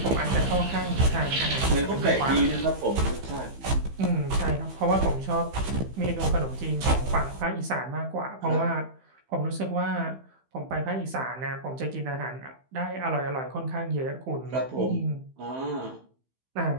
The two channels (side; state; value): left; late; 15 ms